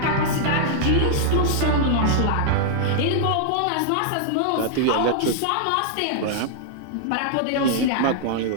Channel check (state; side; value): different; both; correlation -0.01